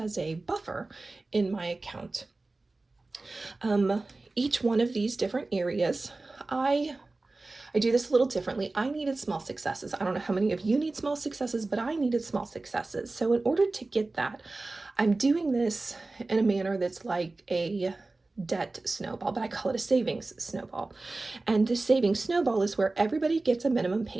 a buffer in my account. Each one of these different areas, I do this a little differently. I needed small successes. I don't know how many of you need small successes, but I needed small successes. So in order to get that, I'm doing this in a manner that's like a debt snowball, but I call it a savings snowball. And the savings snowball is where everybody gets a minimum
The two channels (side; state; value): left; quieter; 3.3 dB